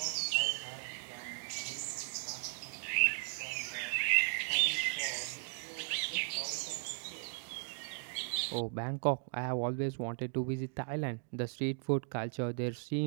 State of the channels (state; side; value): silent; left; digital silence